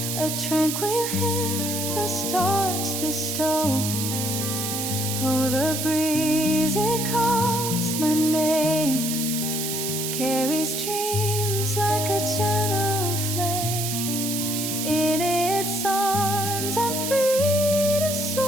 a tranquil hymn the stars bestow. Oh, the breeze, it calls my name, carries dreams like a gentle flame. In its arms I'm free to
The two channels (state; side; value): noise; right; hiss, 2 dB below the sound